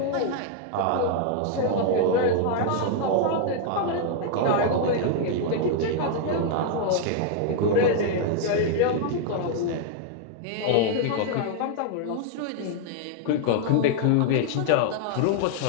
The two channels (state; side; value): different; both; correlation 0.00